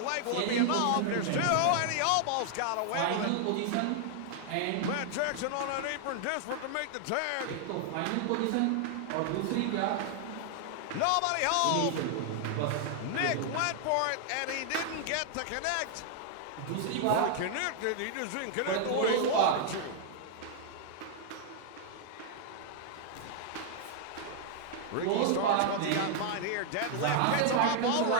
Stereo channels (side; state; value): both; different; correlation 0.00